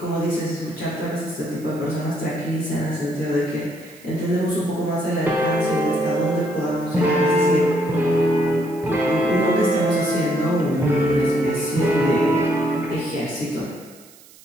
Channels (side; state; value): right; noise; hiss, 24 dB below the sound